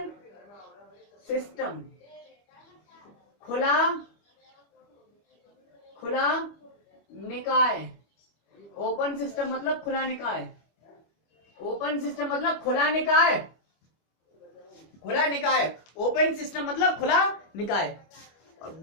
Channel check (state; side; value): late; right; 25 ms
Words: सिस्टम, खुला, खुला निकाय। ओपन सिस्टम मतलब खुला निकाय, ओपन सिस्टम मतलब खुला निकाय, खुला निकाय। ओपन सिस्टम मतलब खुला निकाय।